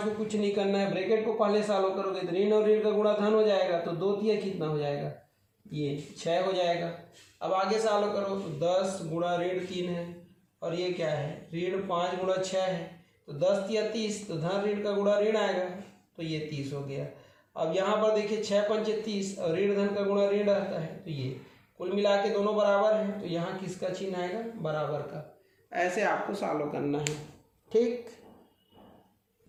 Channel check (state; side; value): identical; both; correlation 1.00